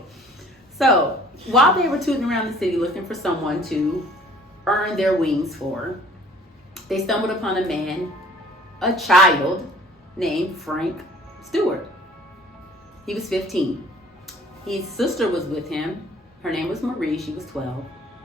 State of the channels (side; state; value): both; normal; correlation 0.53